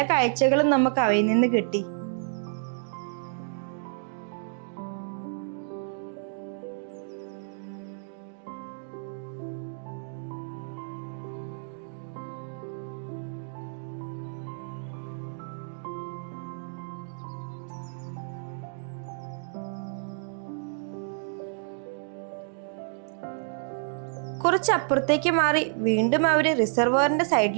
കാഴ്ചകളും നമുക്ക് അവയിൽ നിന്ന് കിട്ടി. കുറച്ച് അപ്പുറത്തേക്ക് മാറി വീണ്ടും അവര് റിസർവോയറിന്റെ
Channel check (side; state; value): left; silent; digital silence